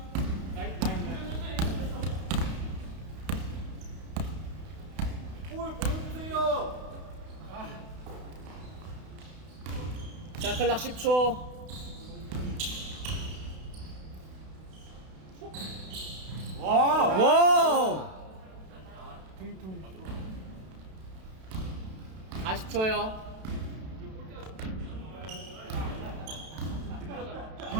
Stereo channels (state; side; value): late; left; 32 ms